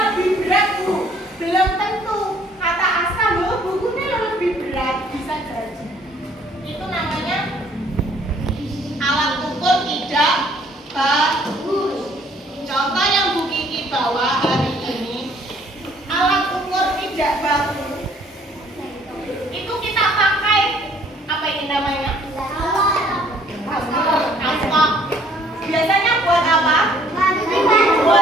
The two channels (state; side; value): normal; both; correlation 0.61